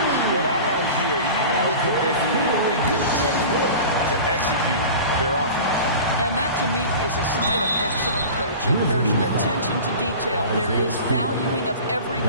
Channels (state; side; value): inverted; both; correlation -0.36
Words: What I like here, even with the big lead, they continue to execute their offense. And that, to me, is a sign of excellent coaching. There's an attention to detail. There is valuing of every